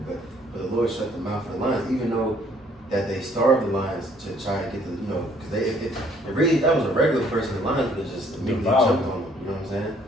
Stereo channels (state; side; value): normal; both; correlation 0.62